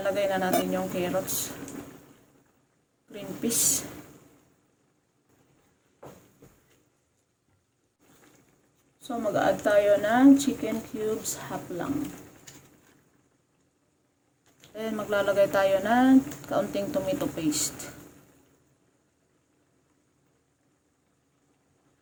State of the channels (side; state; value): both; identical; correlation 1.00